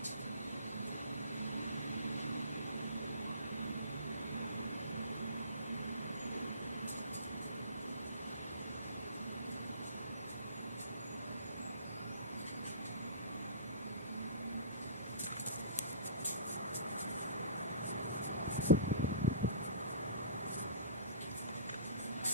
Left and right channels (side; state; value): both; inverted; correlation -0.41